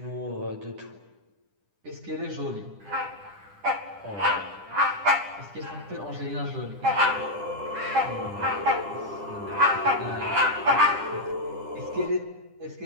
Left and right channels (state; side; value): late; left; 10 ms